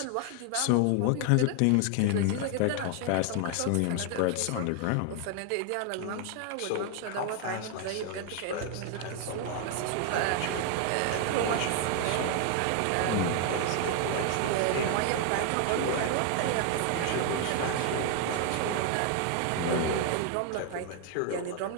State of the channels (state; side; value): different; both; correlation 0.00